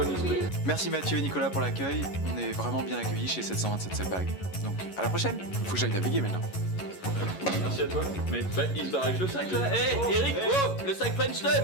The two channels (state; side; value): late; right; 11 ms